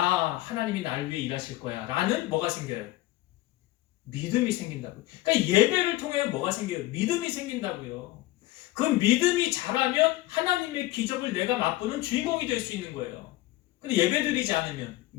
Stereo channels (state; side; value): quieter; right; 17.6 dB